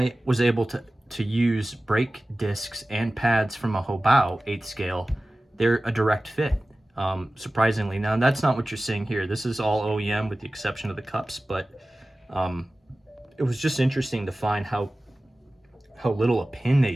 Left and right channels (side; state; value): both; normal; correlation 0.96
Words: was able to use brake discs and pads from a Hobao 8 scale. They're a direct fit, surprisingly. Now, that's not what you're seeing here. This is all OEM with the exception of the cups, but it was just interesting to find how little a pin they